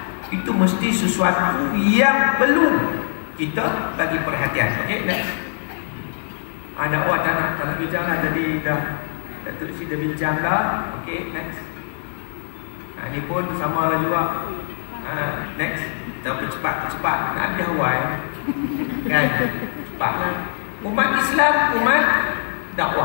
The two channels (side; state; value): right; silent; digital silence